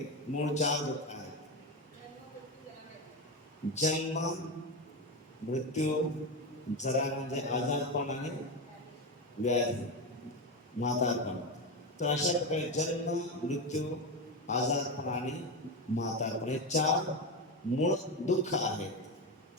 मूळ 4 दुःख आहेत। जन्म, मृत्यू, जरा म्हणजे आजारपण आणि व्याधी, म्हातारपण। तर अशा प्रकारे जन्म, मृत्यू, आजारपण आणि म्हातारपण हे 4 मूळ दुःख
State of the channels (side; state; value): both; normal; correlation 0.16